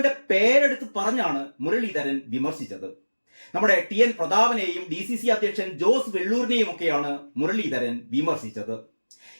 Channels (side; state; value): both; inverted; correlation -1.00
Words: പേരെടുത്ത് പറഞ്ഞാണ് മുരളീധരൻ വിമർശിച്ചത്. നമ്മുടെ TN പ്രതാപനെയും DCC അധ്യക്ഷൻ ജോസ് വെള്ളൂരിനെയും ഒക്കെയാണ് മുരളീധരൻ വിമർശിച്ചത്.